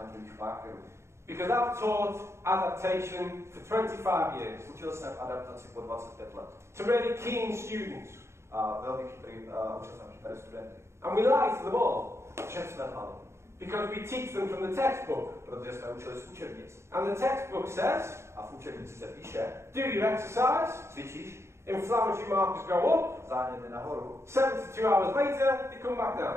markerů. Because I've taught adaptation for 25 years. Učil jsem adaptaci po 25 let. To really keen students. A velmi učil jsem chytré studenty. And we lie to them all. Všem jsme lhali. Because we teach them from the textbook. Protože jsme učili z učebnic. And the textbook says, a v učebnici se píše, do your exercise, cvičíš, inflammatory markers go up, záněty nahoru, 72 hours later, they come back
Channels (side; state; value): left; late; 0.13 ms